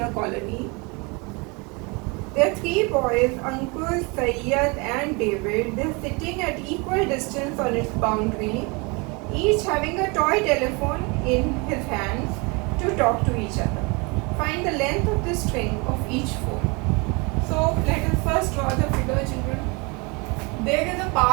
colony. There are 3 boys, Ankur, Sayyad and David. They are sitting at equal distance on its boundary, each having a toy telephone in his hands to talk to each other. Find the length of the string of each phone. So let us first draw the figure, children. There is a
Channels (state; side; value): quieter; left; 29.0 dB